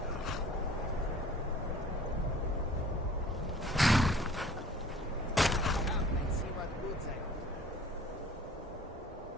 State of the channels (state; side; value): normal; both; correlation 0.49